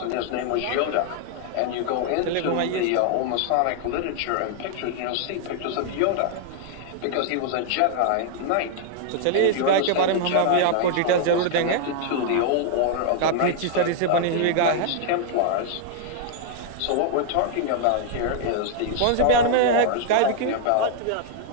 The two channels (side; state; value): both; different; correlation -0.01